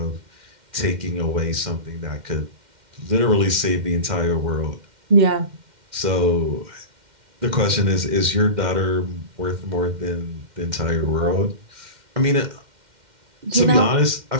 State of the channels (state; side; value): late; left; 2.1 ms